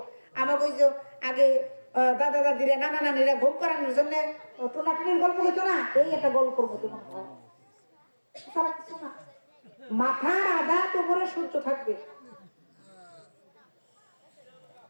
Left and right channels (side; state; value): both; inverted; correlation -1.00